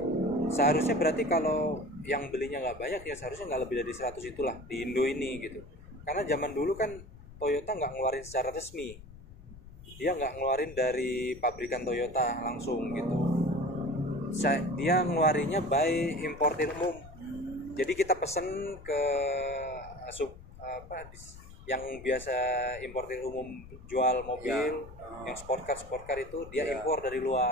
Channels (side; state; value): left; noise; rumble, 17 dB below the sound